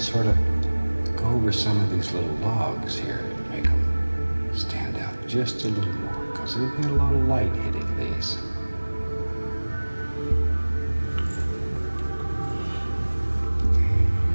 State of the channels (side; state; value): both; inverted; correlation -1.00